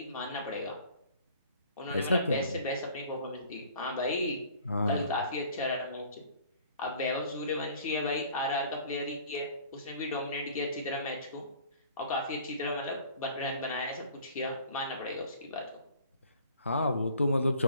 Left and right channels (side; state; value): both; inverted; correlation -0.50